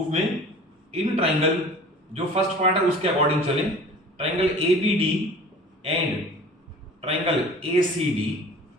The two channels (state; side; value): normal; both; correlation 0.43